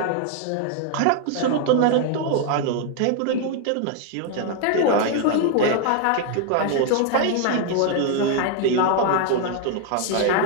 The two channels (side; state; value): both; different; correlation 0.00